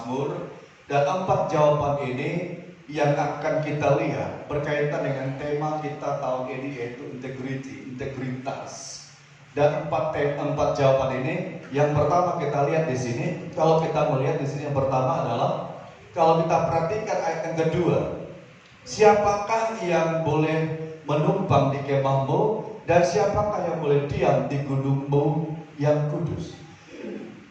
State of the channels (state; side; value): identical; both; correlation 1.00